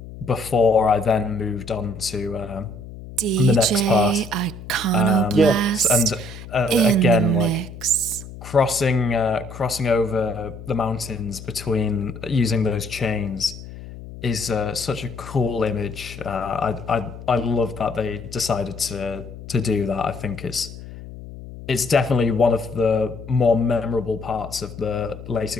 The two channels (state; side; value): noise; left; hum, 14 dB below the sound